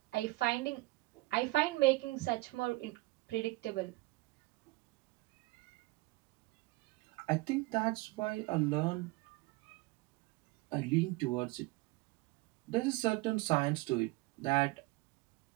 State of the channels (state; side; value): quieter; left; 21.7 dB